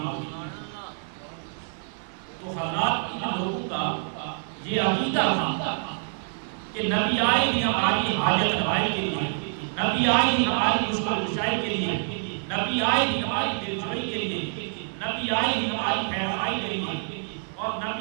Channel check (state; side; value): silent; left; 60 dB below the other